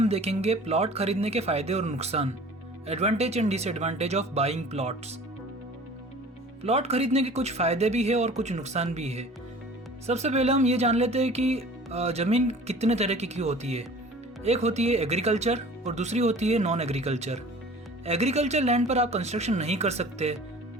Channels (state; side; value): normal; both; correlation 0.45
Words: देखेंगे प्लॉट खरीदने के फायदे और नुकसान, advantage and disadvantage of buying plots. Plot खरीदने के कुछ फायदे भी है और कुछ नुकसान भी है। सबसे पहले हम ये जान लेते हैं कि ज़मीन कितने तरह की होती है। एक होती है एग्रीकल्चर और दूसरी होती है नॉन एग्रीकल्चर। एग्रीकल्चर लैंड पर आप कंस्ट्रक्शन नहीं कर सकते,